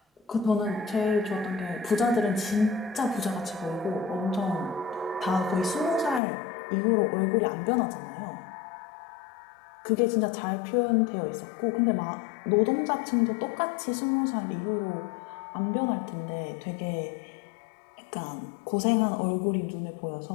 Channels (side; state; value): right; drops out; at 6.2 s